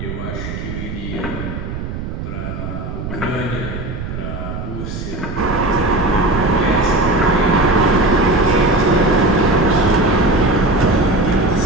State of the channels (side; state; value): right; noise; rumble, 7 dB below the sound